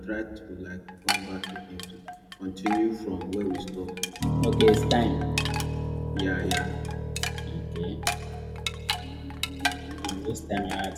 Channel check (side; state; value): both; identical; correlation 1.00